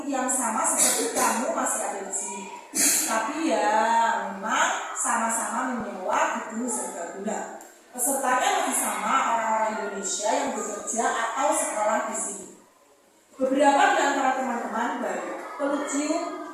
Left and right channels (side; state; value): both; identical; correlation 1.00